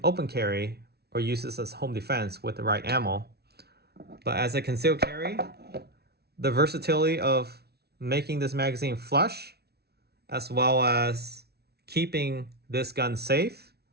open carry or use this as home defense with the right ammo, but as a concealed carry, the versatility of making this magazine flush as well as keeping this gun safe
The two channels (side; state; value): left; late; 0.47 ms